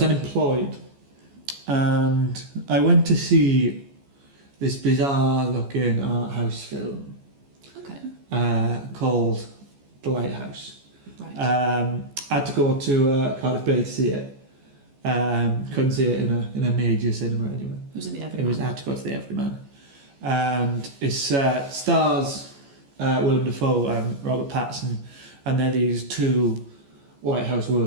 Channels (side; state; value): left; late; 14 ms